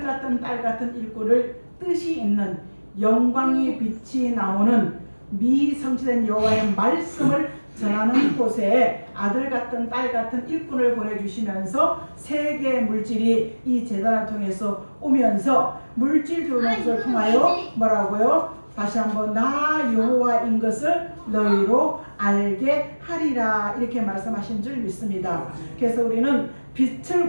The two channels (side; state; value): both; inverted; correlation -1.00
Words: 같은 딸 같은 일꾼을 뜻이 있는 영광의 빛이 나오는 미성취된 여호와의 말씀을 전하는 곳에 아들 같은 딸 같은 일꾼을 보내주시면서 세계 물질이 이 제단을 통해서 오면서 물질 들어오는 것을 통하여 뭐라고요? 다시 한번 나 여호와인 것을 너희로 알게 하리라 이렇게 말씀하신 줄 믿습니다. 그래서 우리는 빛을